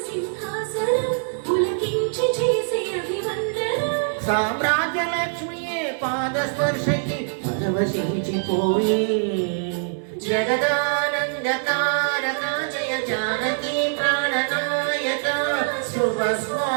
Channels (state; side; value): silent; left; digital silence